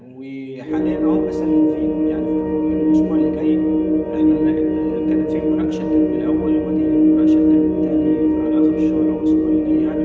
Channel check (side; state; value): both; identical; correlation 1.00